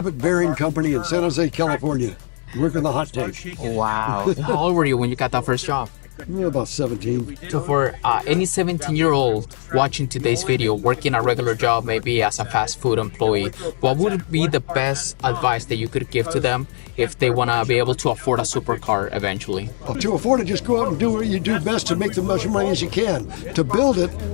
Bearing Company in San Jose, California. Working the hot tank. Wow. How old were you when you got that first job? About 17. So for any 17-year-old watching today's video, working a regular job, maybe as a fast food employee, what would be the best advice that you could give to them if they want to be able to afford a supercar eventually? To afford it, just go out and do what you do best to make the much money as you can. To build it,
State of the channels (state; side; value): silent; right; 65 dB below the other